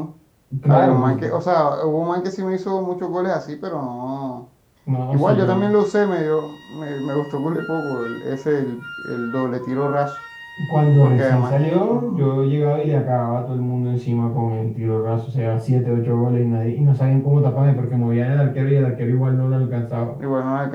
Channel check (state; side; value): identical; both; correlation 1.00